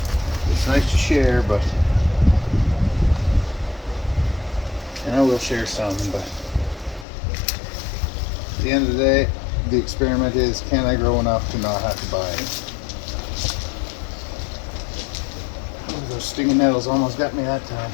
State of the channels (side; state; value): right; drops out; at 7.1 s